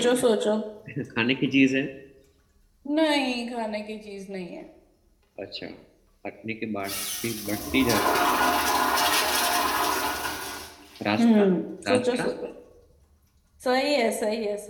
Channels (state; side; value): identical; both; correlation 1.00